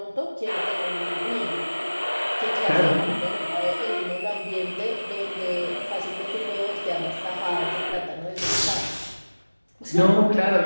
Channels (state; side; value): inverted; both; correlation -1.00